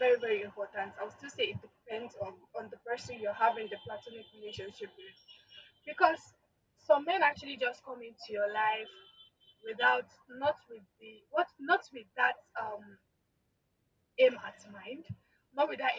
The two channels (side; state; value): both; identical; correlation 1.00